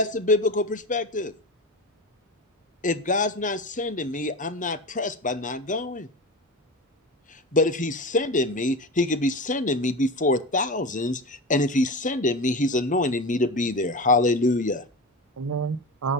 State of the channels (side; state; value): both; normal; correlation 0.25